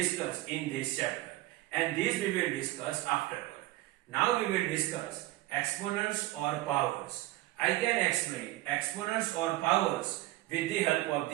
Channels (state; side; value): quieter; left; 17.5 dB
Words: in this chapter. And this we will discuss afterward. Now we will discuss exponents or powers. I can explain exponents or powers with the help of